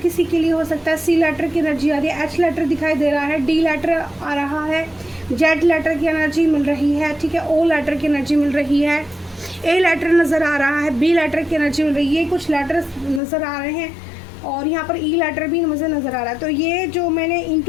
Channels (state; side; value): drops out; right; at 13.2 s